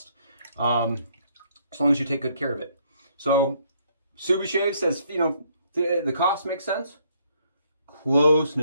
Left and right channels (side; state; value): both; inverted; correlation -0.68